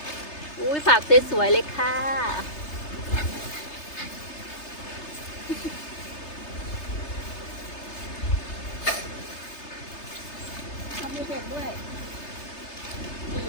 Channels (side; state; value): right; late; 3.3 ms